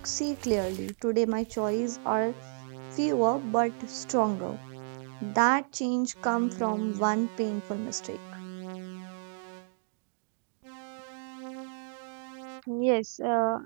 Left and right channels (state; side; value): silent; left; digital silence